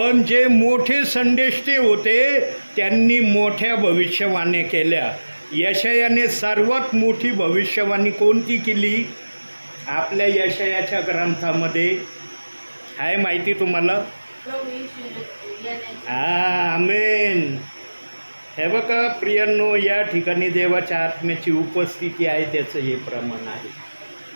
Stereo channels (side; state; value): both; inverted; correlation -1.00